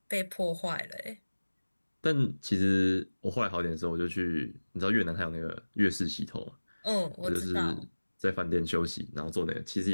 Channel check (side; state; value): both; inverted; correlation -1.00